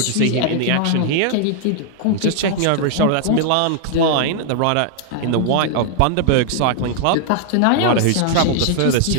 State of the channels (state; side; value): different; both; correlation -0.01